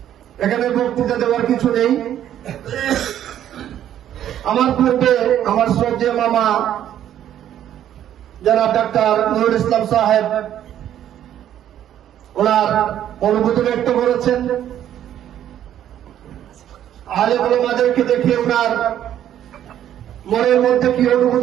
এখানে বক্তৃতা দেওয়ার কিছু নেই। আমার পূর্বে আমার শ্রদ্ধেয় মামা জনাব ডাক্তার নুরুল ইসলাম সাহেব ওনার অনুভূতি ব্যক্ত করেছেন। আলেম ওলামাদেরকে দেখে ওনার মনের মধ্যে কি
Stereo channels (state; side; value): quieter; left; 11.0 dB